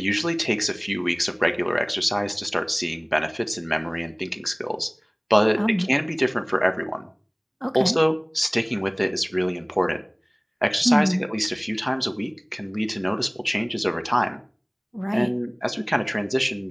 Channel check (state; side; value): identical; both; correlation 1.00